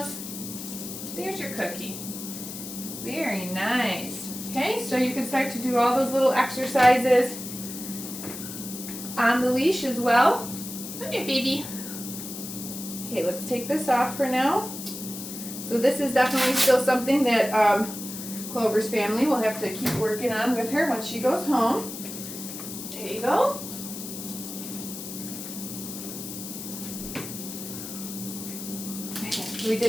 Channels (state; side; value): noise; left; hiss, 9 dB below the sound